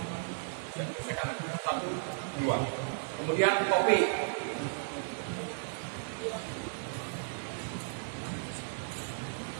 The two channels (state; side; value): silent; left; digital silence